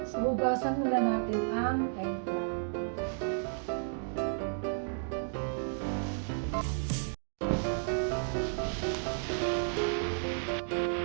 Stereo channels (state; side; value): silent; left; digital silence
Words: So hugasan muna natin ang eggplant.